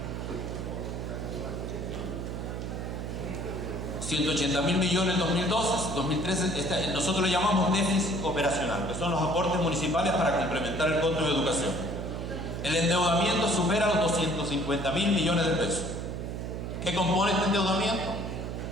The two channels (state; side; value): noise; right; hum, 5 dB below the sound